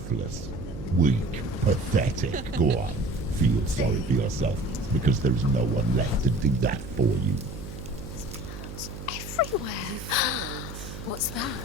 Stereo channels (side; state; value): right; noise; hum, 10 dB below the sound